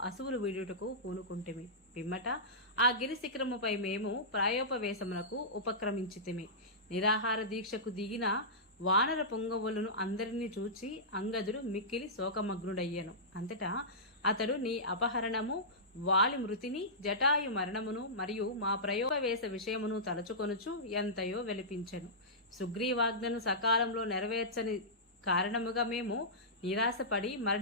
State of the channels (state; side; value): normal; both; correlation -0.16